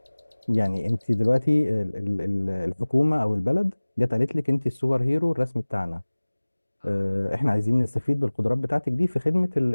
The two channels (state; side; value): inverted; both; correlation -1.00